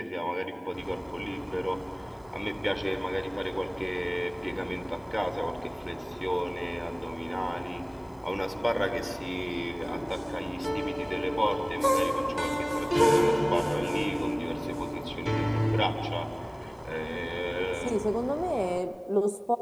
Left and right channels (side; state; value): both; identical; correlation 1.00